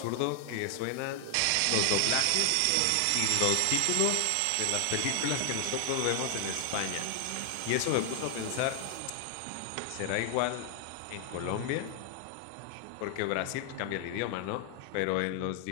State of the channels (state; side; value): different; both; correlation 0.00